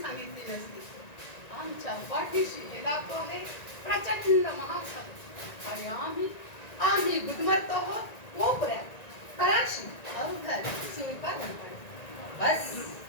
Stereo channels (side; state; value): right; late; 1.9 ms